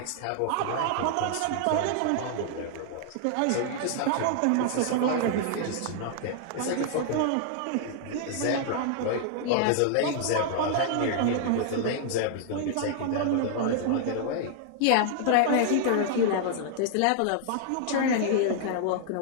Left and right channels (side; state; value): both; different; correlation -0.01